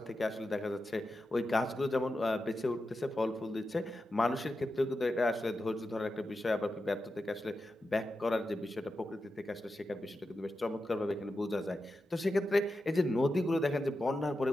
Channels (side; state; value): both; normal; correlation 0.90